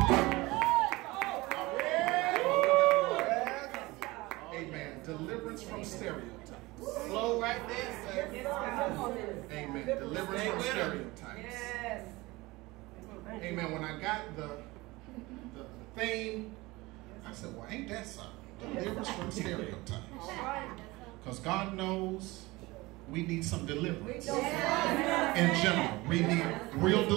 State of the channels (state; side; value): quieter; left; 21.4 dB